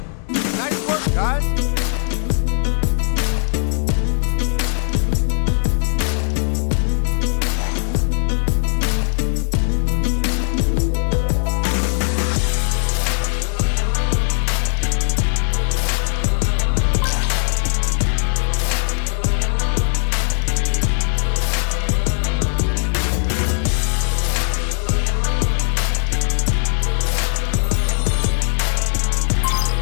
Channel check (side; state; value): right; silent; digital silence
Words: Nice work, guys.